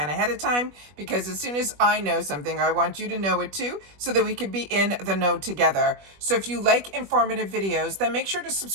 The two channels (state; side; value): late; left; 21 ms